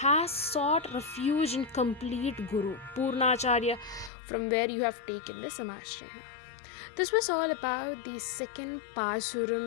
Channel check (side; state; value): right; drops out; at 4.1 s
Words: sought refuge in complete Guru, Purnacharya, from where you have taken the Samashrayana. This was all about the second